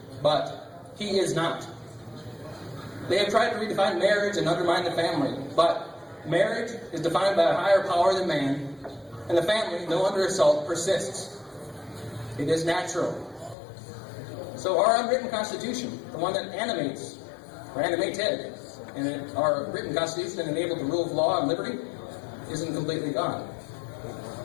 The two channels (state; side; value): drops out; right; at 13.6 s